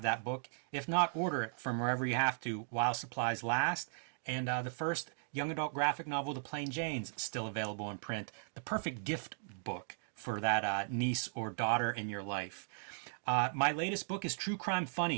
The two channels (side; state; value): left; silent; digital silence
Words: that book. If not, order it from wherever you have to while supplies last. And the first young adult graphic novel, The Plain Janes, still available in print. The perfect gift book for that niece or daughter in your life. My latest book is True Crime